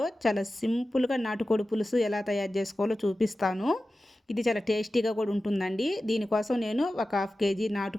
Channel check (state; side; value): normal; both; correlation 0.94